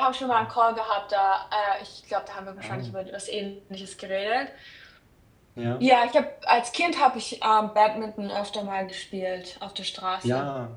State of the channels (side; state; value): both; identical; correlation 1.00